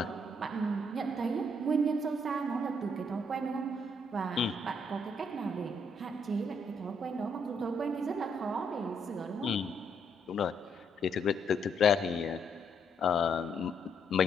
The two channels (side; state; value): both; normal; correlation 0.73